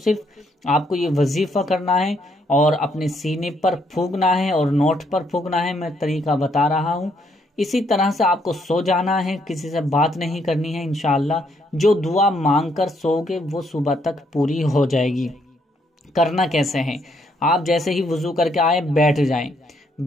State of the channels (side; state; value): both; normal; correlation 0.72